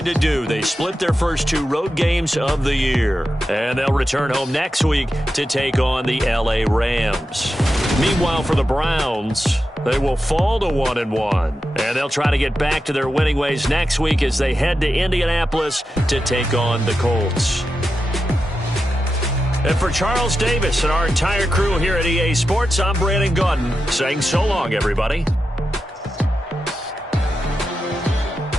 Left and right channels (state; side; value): normal; both; correlation 0.90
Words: to do. They split their first 2 road games of the year. And they'll return home next week to take on the LA Rams. Meanwhile, for the Browns, they will fall to 1-1. And they'll try to get back to their winning ways next week as they head to Indianapolis to take on the Colts. And for Charles Davis and our entire crew here at EA Sports, I'm Brandon Gaudin saying so long, everybody.